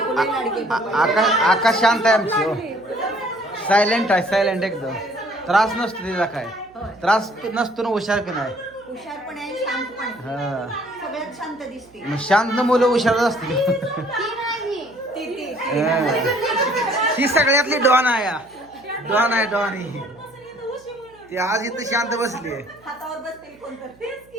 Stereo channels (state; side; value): noise; right; hum, 29 dB below the sound